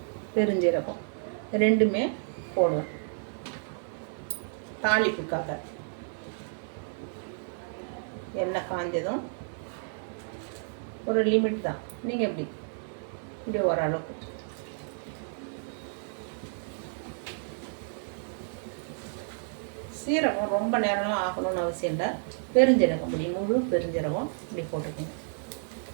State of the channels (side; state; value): left; silent; digital silence